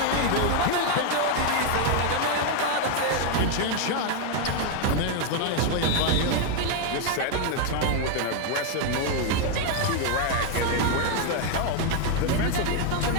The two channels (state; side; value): different; both; correlation 0.01